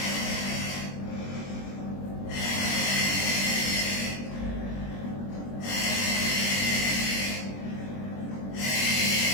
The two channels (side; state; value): right; late; 21 ms